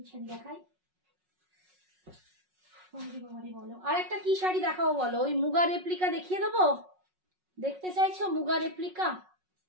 শাড়ি দেখাই, বলো আর একটা কি শাড়ি দেখাবো বলো? ওই মুগা রেপ্লিকা দেখিয়ে দেবো? দেখতে চাইছো মুগা রেপ্লিকা?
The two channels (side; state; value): left; late; 5.4 ms